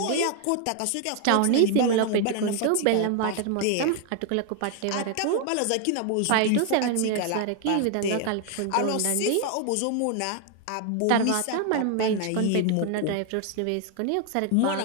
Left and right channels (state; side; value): different; both; correlation 0.00